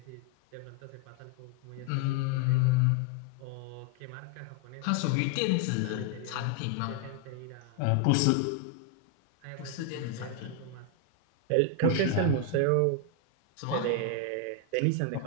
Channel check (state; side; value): different; both; correlation 0.00